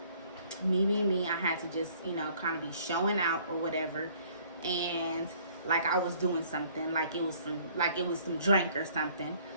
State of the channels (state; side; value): inverted; both; correlation -0.59